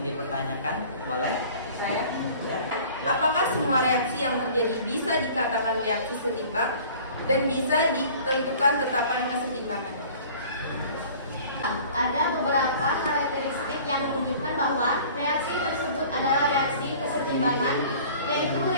dipertanyakan? Boleh? Saya. Ya. Apakah semua reaksi yang terjadi bisa dikatakan reaksi setimbang dan bisa ditentukan tetapan kesetimbangan? Ada beberapa karakteristik yang menunjukkan bahwa reaksi tersebut adalah reaksi kesetimbangan, yaitu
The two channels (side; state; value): both; inverted; correlation -0.47